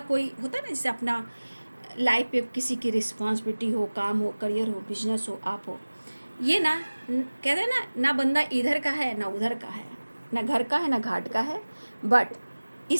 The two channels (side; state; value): both; inverted; correlation -1.00